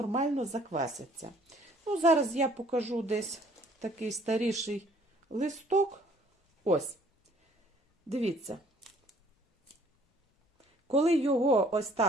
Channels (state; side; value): normal; both; correlation 0.58